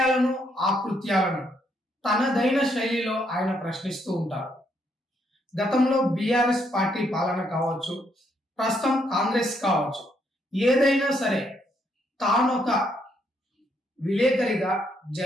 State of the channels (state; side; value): normal; both; correlation 0.74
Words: ఆకృత్యాలను తనదైన శైలిలో ఆయన ప్రశ్నిస్తూ ఉంటారు. గతంలో బీఆర్ఎస్ పార్టీ పాలన కావచ్చు, ప్రస్తుతం కాంగ్రెస్ కావచ్చు, ఏదైనా సరే తానొక విలేకరిగా